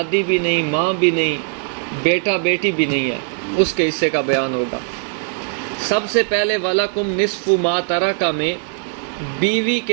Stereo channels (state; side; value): silent; left; digital silence